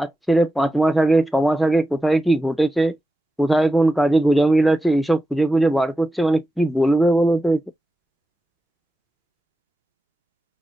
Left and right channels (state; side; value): normal; both; correlation 0.93